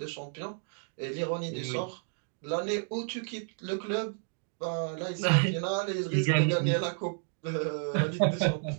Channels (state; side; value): silent; left; 57 dB below the other